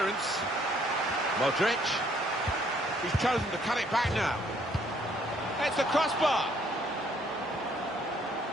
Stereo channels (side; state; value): both; normal; correlation 0.65